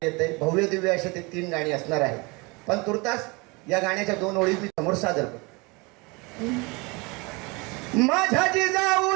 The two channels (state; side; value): quieter; left; 26.9 dB